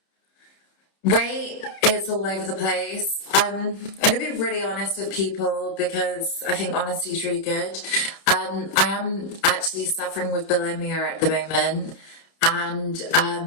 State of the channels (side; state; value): right; late; 30 ms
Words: Weight is all over the place. I'm going to be really honest with people because I think honesty is really good. I am actually suffering with bulimia at the moment, and